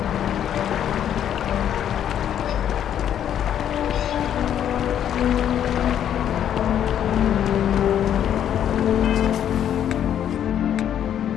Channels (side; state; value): right; quieter; 9.9 dB